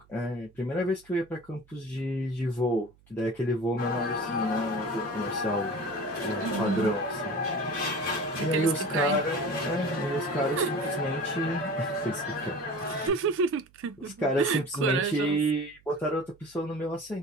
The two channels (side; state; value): right; noise; hum, 29 dB below the sound